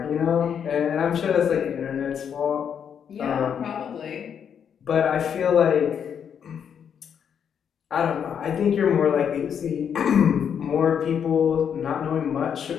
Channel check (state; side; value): quieter; right; 7.9 dB